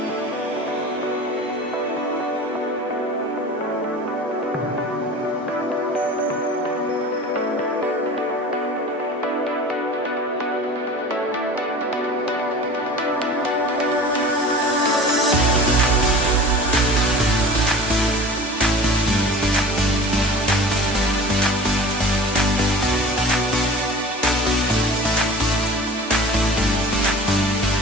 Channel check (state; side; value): normal; both; correlation 0.38